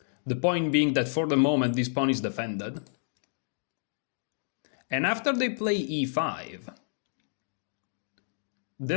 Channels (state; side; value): silent; right; digital silence